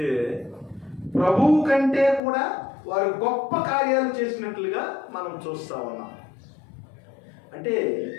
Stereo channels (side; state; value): right; drops out; at 2.2 s